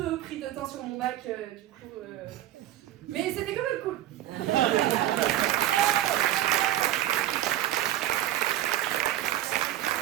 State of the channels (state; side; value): quieter; left; 13.3 dB